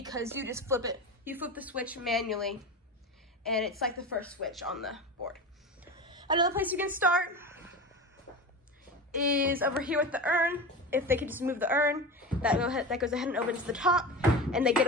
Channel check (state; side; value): normal; both; correlation 0.27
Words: you just flip it. You flip the switch manually, and it's like the first switch on the board. Another place you can start is over here with the urn. If they could just move the urn, that goes ahead and opens the top, and they get